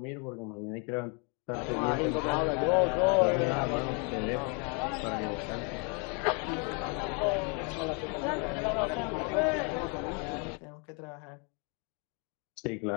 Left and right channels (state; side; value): quieter; right; 35.3 dB